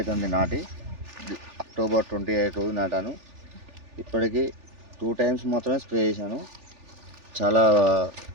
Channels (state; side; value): late; left; 3.4 ms